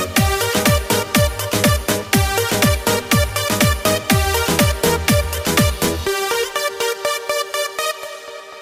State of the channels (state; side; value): identical; both; correlation 1.00